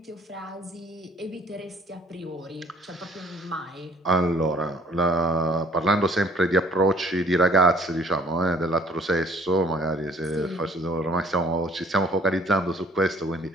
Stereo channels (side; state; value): both; normal; correlation 0.57